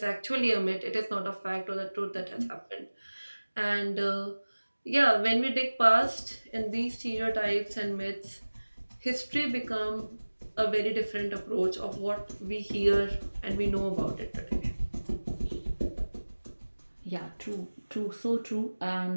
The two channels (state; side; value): inverted; both; correlation -1.00